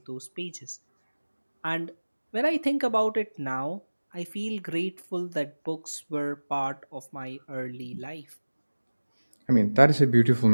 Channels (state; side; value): inverted; both; correlation -1.00